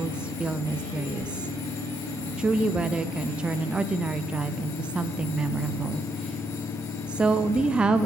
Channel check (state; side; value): normal; both; correlation 0.77